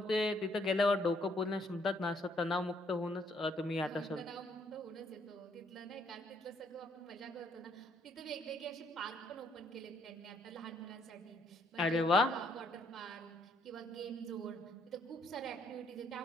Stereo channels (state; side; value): normal; both; correlation 0.69